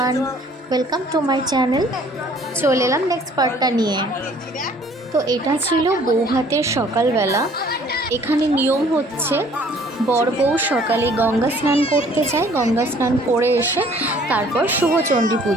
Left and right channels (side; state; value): both; normal; correlation 0.56